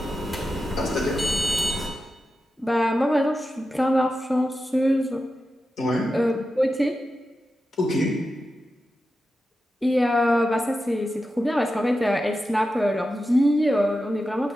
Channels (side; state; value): both; normal; correlation 0.91